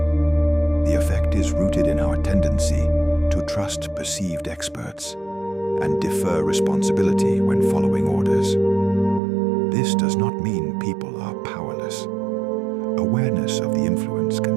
The effect is rooted in our tendency to trust perceived experts and defer responsibility when following orders. This does not mean people are powerless. Awareness of the influence can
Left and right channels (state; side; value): drops out; left; at 9.2 s